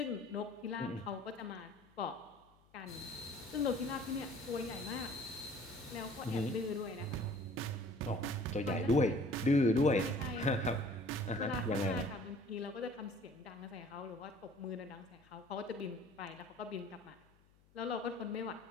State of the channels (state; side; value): noise; left; hum, 30 dB below the sound